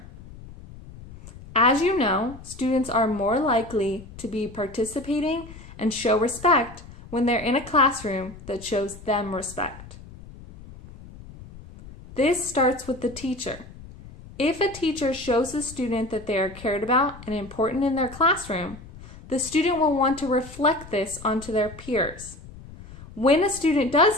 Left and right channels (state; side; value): noise; left; rumble, 17 dB below the sound